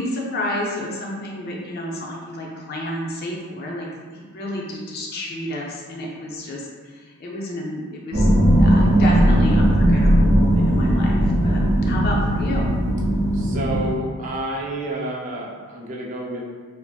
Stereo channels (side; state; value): both; normal; correlation 0.81